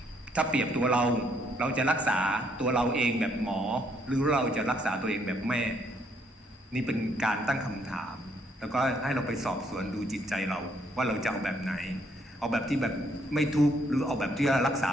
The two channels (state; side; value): normal; both; correlation 0.70